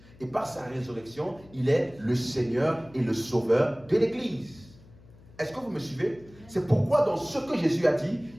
Et par sa résurrection, il est le Seigneur et le Sauveur de l'Église. Est-ce que vous me suivez? C'est pourquoi dans ce que Jésus a dit,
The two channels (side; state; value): left; noise; hum, 24 dB below the sound